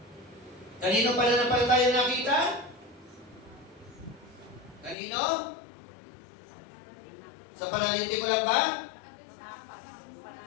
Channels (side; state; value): right; drops out; at 5.0 s